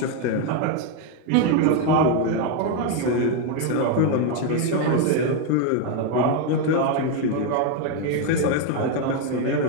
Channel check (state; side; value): different; both; correlation 0.01